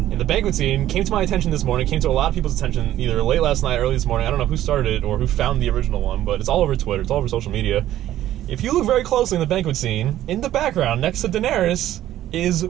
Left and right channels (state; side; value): quieter; left; 13.1 dB